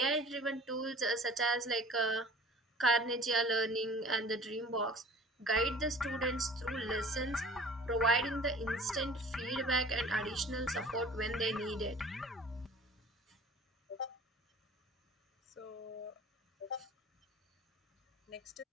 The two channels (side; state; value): both; normal; correlation 0.45